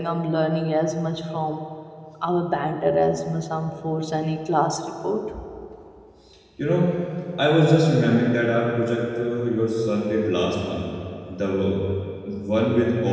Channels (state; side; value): identical; both; correlation 1.00